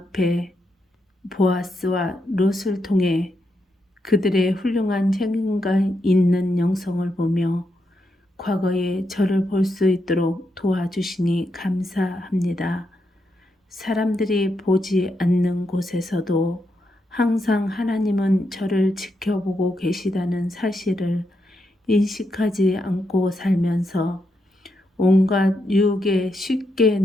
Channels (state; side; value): normal; both; correlation 0.82